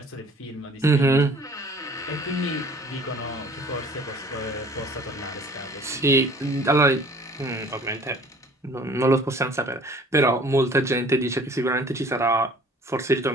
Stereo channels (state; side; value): normal; both; correlation 0.51